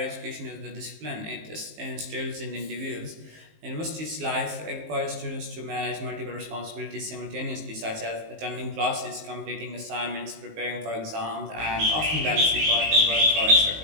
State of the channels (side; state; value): left; late; 19 ms